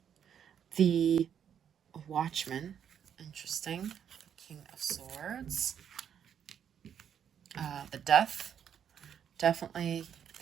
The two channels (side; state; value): left; quieter; 8.6 dB